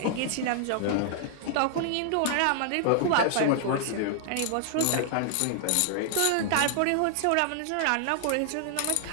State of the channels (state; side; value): different; both; correlation -0.01